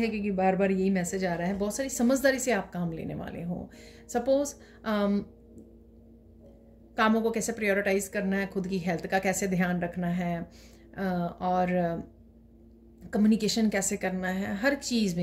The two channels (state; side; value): identical; both; correlation 1.00